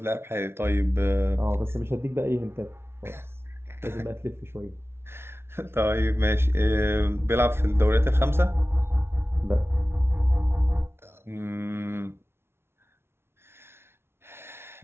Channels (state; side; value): late; left; 0.12 ms